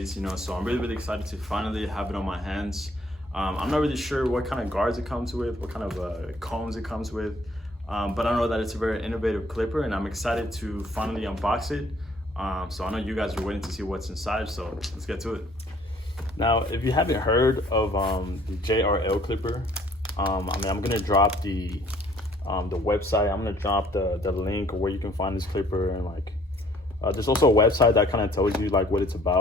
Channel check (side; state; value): both; normal; correlation 0.59